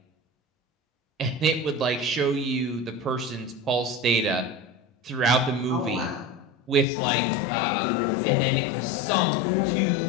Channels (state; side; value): drops out; right; at 6.9 s